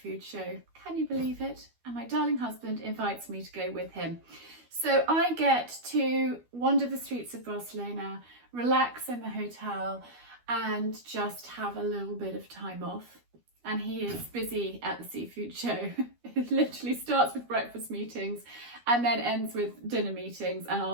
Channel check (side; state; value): left; late; 12 ms